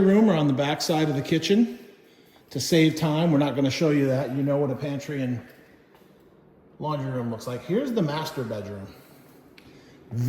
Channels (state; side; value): identical; both; correlation 1.00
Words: room are on the back side of the kitchen. To save time, we're not going to show you that. You know what a pantry and laundry room looks like. Here's the master bedroom.